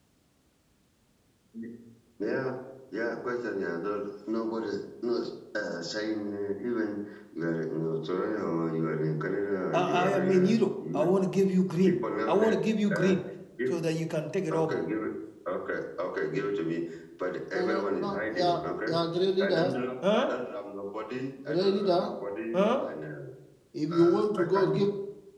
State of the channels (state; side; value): identical; both; correlation 1.00